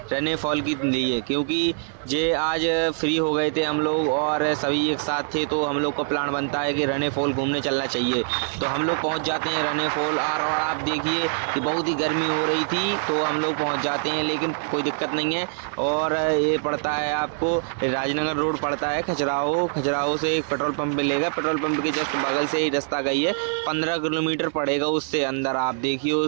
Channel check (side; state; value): left; silent; 62 dB below the other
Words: रने फॉल के लिए, क्योंकि जे आज फ्री हो गए थे हम लोग और सभी एक साथ थे, तो हम लोग का प्लान बनता है कि रने फॉल घूमने चलना चाहिए। तो हम लोग पहुंच जाते हैं रने फॉल और आप देखिए कि बहुत ही गर्मी हो रही थी, तो हम लोग पहुंच जाते हैं, लेकिन कोई दिक्कत नहीं है। और ये पड़ता है आपको राजनगर रोड पड़ता है खजुराहो से एक पेट्रोल पंप मिलेगा, पेट्रोल पंप के जस्ट बगल से ही रास्ता गई है, 15 किलोमीटर पड़ेगा उससे अंदर। आप